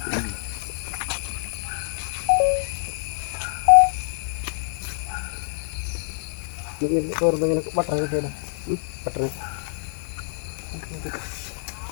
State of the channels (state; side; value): silent; right; digital silence